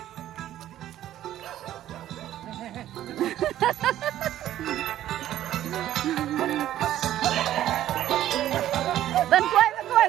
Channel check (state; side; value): quieter; left; 12.6 dB